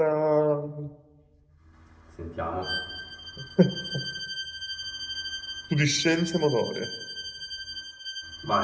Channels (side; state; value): both; identical; correlation 1.00